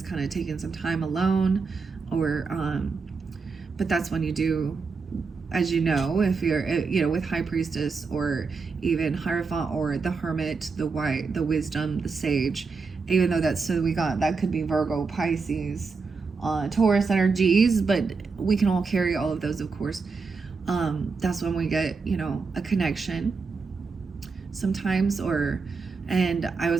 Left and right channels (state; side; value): quieter; left; 4.7 dB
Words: kind of taking some time alone, or but that's when you do, as you know, if you're with High Priestess, or even Hierophant, or the Hermit, the White, the Wisdom, the Sage, even though that could be Virgo, Pisces, Taurus energies, but we can all carry all of those, of course. That's when we get, a connection sometimes, and I